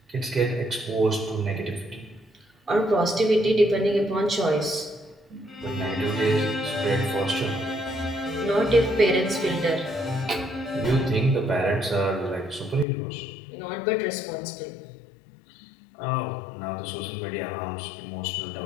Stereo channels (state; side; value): drops out; right; at 12.9 s